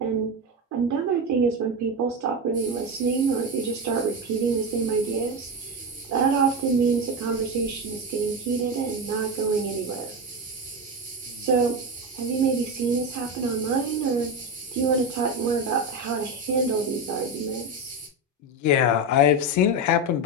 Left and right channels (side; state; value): both; normal; correlation 0.16